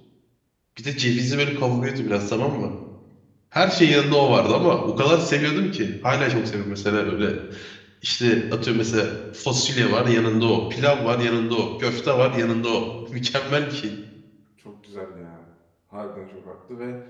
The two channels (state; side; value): identical; both; correlation 1.00